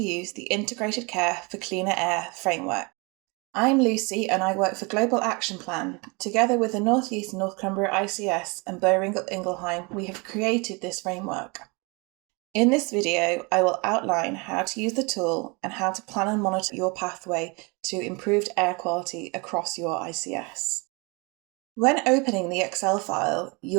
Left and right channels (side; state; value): left; quieter; 29.1 dB